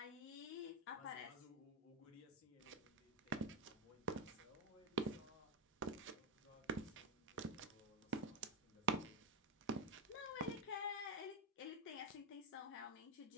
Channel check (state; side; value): normal; both; correlation 0.06